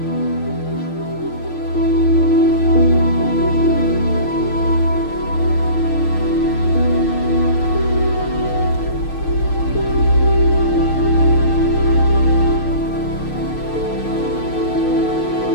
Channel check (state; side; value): late; right; 6.5 ms